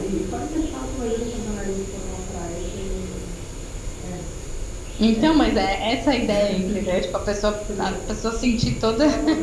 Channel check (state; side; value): identical; both; correlation 1.00